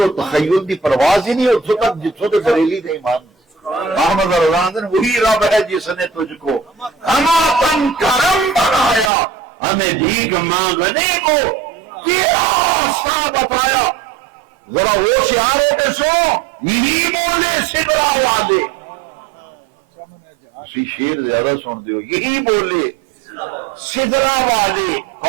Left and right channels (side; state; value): left; drops out; at 9.1 s